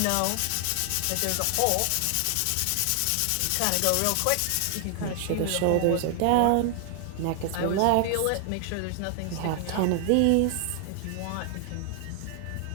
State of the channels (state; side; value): different; both; correlation 0.00